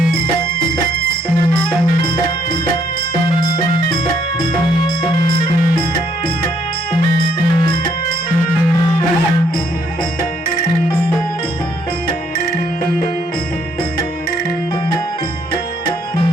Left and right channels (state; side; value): normal; both; correlation 0.69